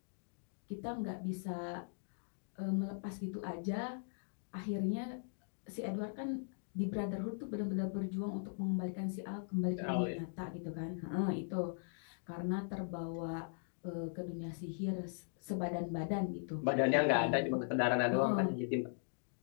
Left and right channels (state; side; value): silent; right; digital silence